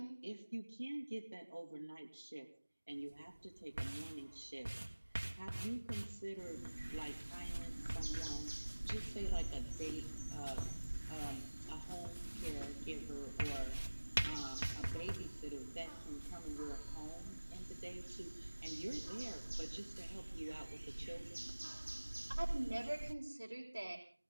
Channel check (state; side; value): inverted; both; correlation -1.00